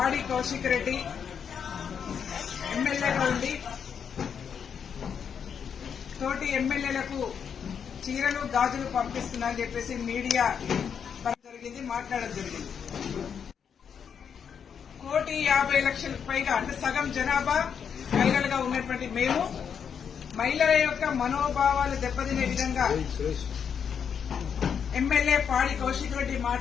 కౌశిక్ రెడ్డి ఎమ్మెల్యేగా ఉండి తోటి ఎమ్మెల్యేలకు చీరలు గాజులు పంపిస్తున్నారని చెప్పేసి మీడియా జరిగింది, మాట్లాడడం జరిగింది. 1,50,00,000 పైగా అంటే సగం జనాభా మహిళలుగా ఉన్నటువంటి మేము మహిళల యొక్క మనోభావాలు దెబ్బతినే విధంగా ఎమ్మెల్యే పాడి కౌశిక్ రెడ్డి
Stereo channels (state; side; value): quieter; right; 7.3 dB